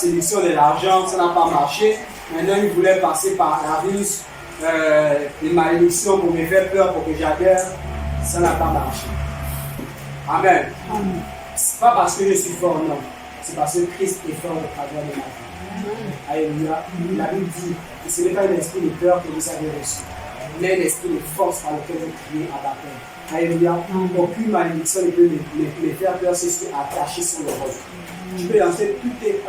de l'argent, ça n'a pas marché. Maintenant, il voulait passer par la ruse, les malédictions pour me faire peur, pour que j'adhère. Ça n'a pas marché. Amen. Ce n'est pas parce que je suis fort, non. C'est parce que Christ est fort au travers de ma vie. Alléluia. La Bible dit que ce n'est pas un esprit de peur que vous avez reçu, mais un esprit de force par lequel vous criez à la paix. Alléluia. Aucune malédiction ne peut me faire peur, c'est ce qui est attaché sur le roc. Tu peux lancer toutes tes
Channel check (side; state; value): both; identical; correlation 1.00